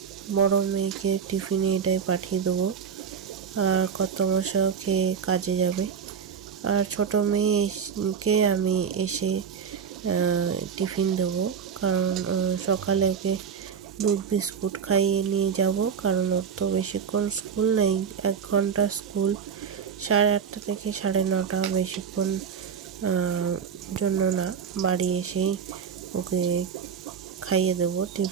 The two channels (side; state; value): left; quieter; 6.9 dB